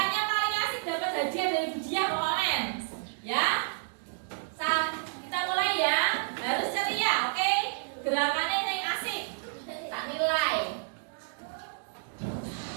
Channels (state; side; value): silent; left; digital silence